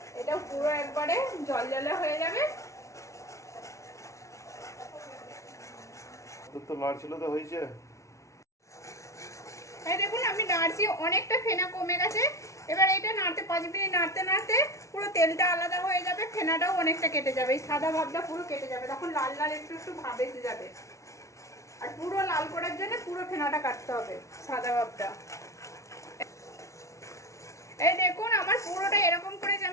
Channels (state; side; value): late; right; 0.14 ms